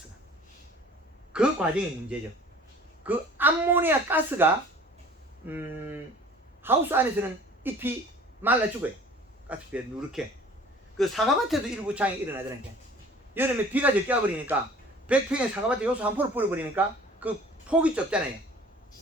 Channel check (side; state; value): both; normal; correlation 0.48